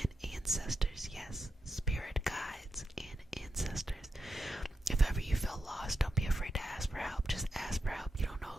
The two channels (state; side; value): normal; both; correlation 0.87